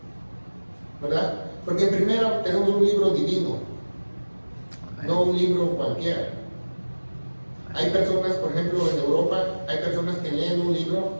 ¿Verdad? Porque primero tenemos un libro divino, no un libro cualquiera. Hay personas, por ejemplo, en Europa, hay personas que leen un libro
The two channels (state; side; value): inverted; both; correlation -1.00